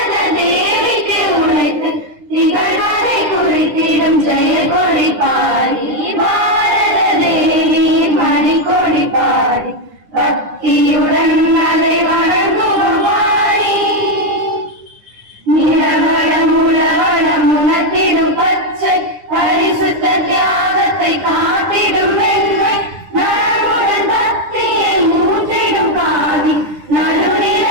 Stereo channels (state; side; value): late; left; 9.8 ms